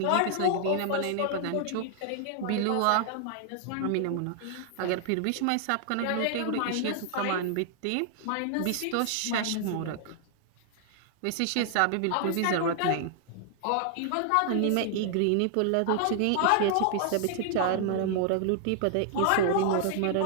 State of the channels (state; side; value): different; both; correlation 0.00